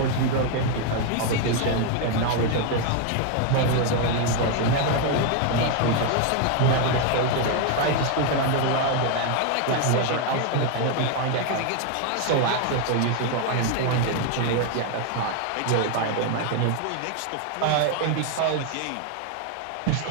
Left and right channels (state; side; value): different; both; correlation 0.01